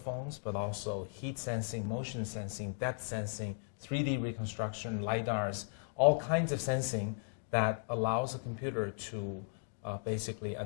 but also heat sensing, motion sensing, depth sensing, 3D reconstruction, LiDARs, all kinds of sensing that allows a computer to basically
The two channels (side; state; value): right; silent; digital silence